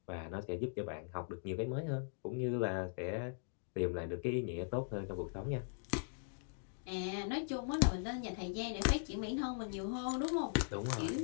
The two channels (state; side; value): silent; right; digital silence